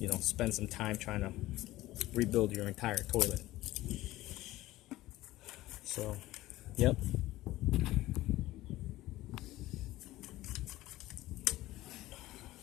spend some time trying to rebuild your entire toilet. So yep.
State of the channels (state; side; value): quieter; right; 16.8 dB